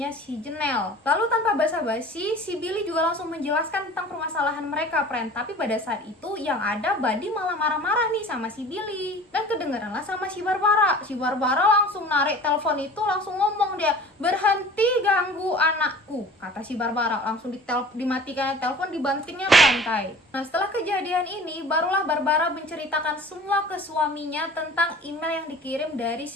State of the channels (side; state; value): both; normal; correlation 0.44